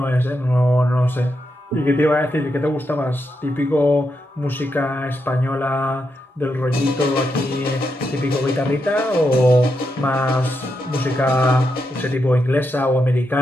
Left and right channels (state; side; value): normal; both; correlation 0.84